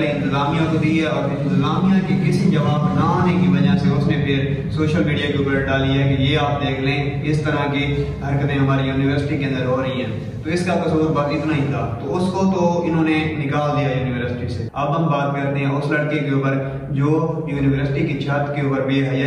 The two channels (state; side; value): identical; both; correlation 1.00